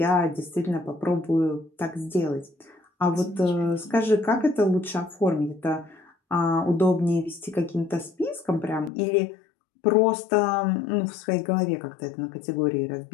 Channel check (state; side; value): drops out; right; at 8.9 s